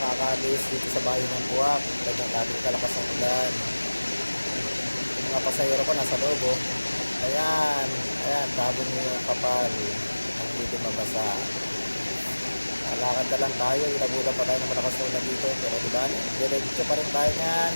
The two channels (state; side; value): inverted; both; correlation -1.00